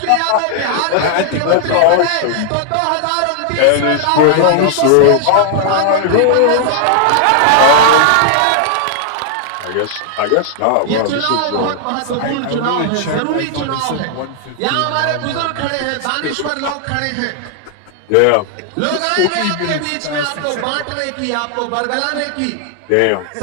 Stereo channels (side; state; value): both; different; correlation 0.00